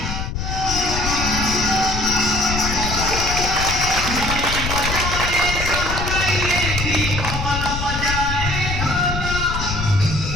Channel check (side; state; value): left; noise; rumble, 4 dB below the sound